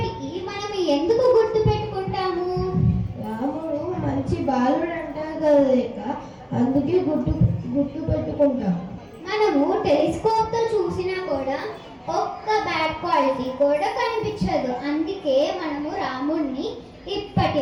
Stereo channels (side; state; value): both; identical; correlation 1.00